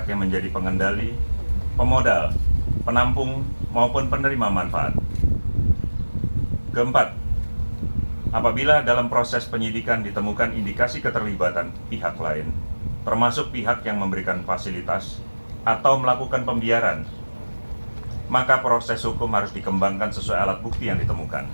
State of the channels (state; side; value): inverted; both; correlation -1.00